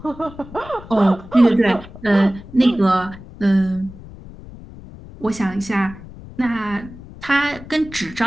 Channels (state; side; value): noise; left; rumble, 17 dB below the sound